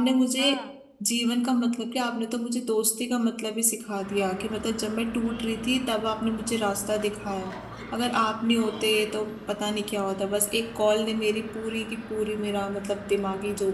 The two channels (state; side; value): identical; both; correlation 1.00